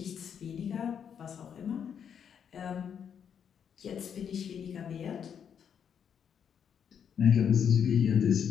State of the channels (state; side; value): quieter; right; 7.9 dB